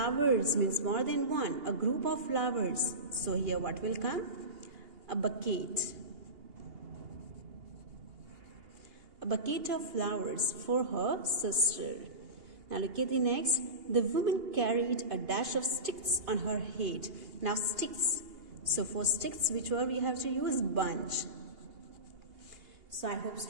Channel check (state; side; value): late; left; 2.8 ms